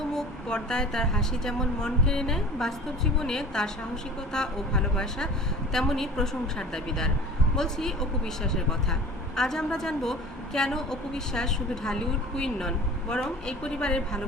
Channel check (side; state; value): both; normal; correlation 0.41